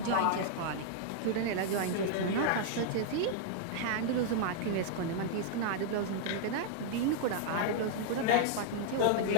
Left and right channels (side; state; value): both; different; correlation 0.00